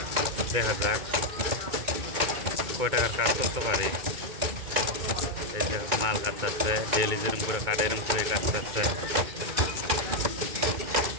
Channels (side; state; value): left; late; 2.2 ms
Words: দেখা যাক কয় টাকার কাজ করতে পারি। এই যে মাল কাটতেছে, ডেলি যেরকম করে কাটে এরকম করে কাটতেছে।